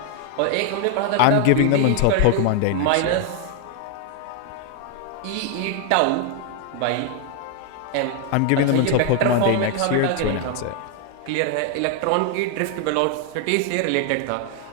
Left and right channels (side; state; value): both; different; correlation 0.01